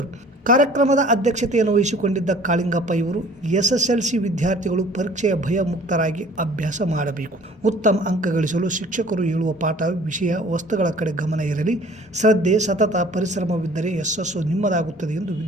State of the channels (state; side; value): normal; both; correlation 0.51